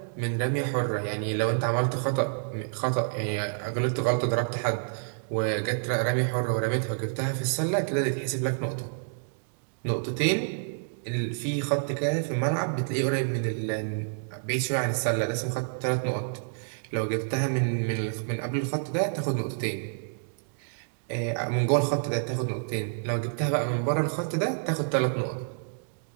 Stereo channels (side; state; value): left; silent; digital silence